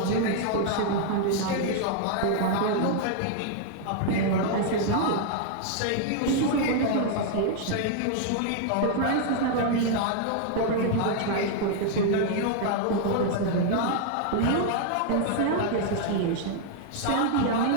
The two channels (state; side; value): different; both; correlation 0.00